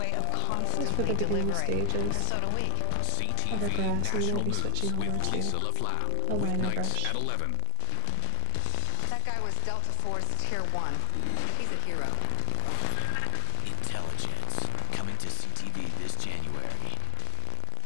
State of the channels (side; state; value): both; different; correlation 0.01